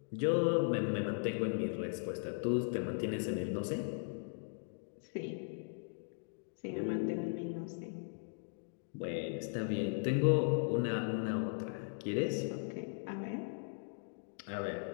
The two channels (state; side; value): silent; right; digital silence